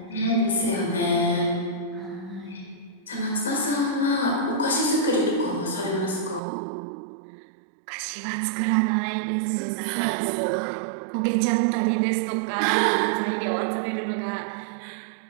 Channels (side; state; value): left; drops out; at 6.4 s